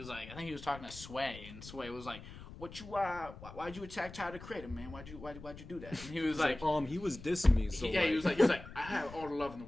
like, I think he was talking to Sway, and Sway was like, "What you why'd you attack Tyler, the Creator, man? Why'd you do that?" And he was like, he was dissing me, so yeah, he was like, I have all the love in the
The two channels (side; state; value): left; noise; rumble, 14 dB below the sound